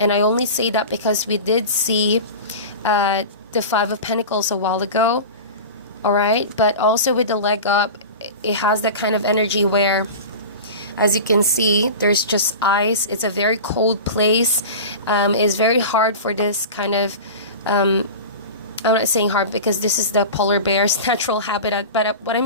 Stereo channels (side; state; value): both; inverted; correlation -0.31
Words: I only say that because we did see the Five of Pentacles a while ago. All right. But also with the leg up, it has that kind of energy where, as you can see, there's just ice. It's a very cold place. It's very hard for this kind of... I'm not saying hard because this is the polar bear's natural habitat. But what I'm